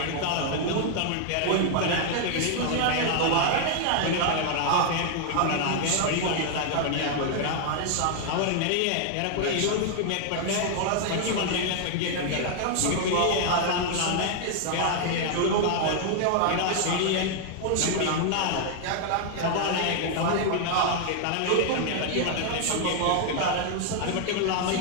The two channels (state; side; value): different; both; correlation 0.00